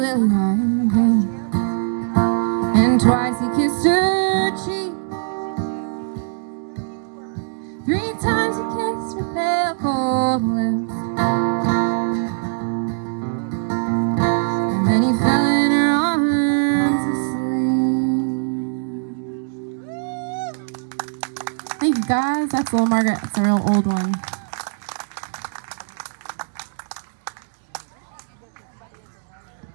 white hand, and twice he kissed her cheek. 3 times he kissed her pale cold lips, and then he fell in her arms asleep. Thank you guys. That's Little Margaret. It's a real old one.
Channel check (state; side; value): silent; left; 65 dB below the other